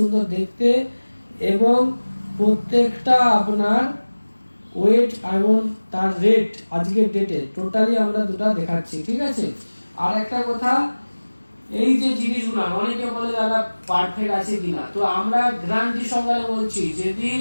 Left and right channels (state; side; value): inverted; both; correlation -1.00